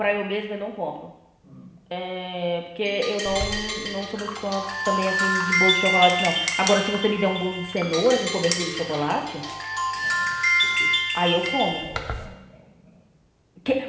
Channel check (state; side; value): identical; both; correlation 1.00